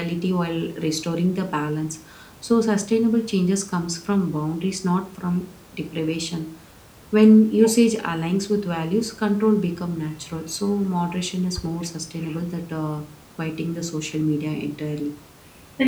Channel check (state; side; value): identical; both; correlation 1.00